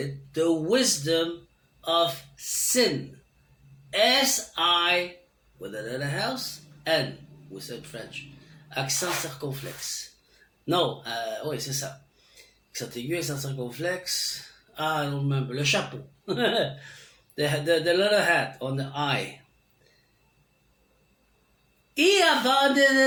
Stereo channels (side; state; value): both; identical; correlation 1.00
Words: the wisdom of sin. S-I, with another house, N, we said French. Accent circonflexe. Non, oui, c'est ça. Accent aigu, accent circonflexe. I don't remember. Le chapeau. the little hat on the eye. He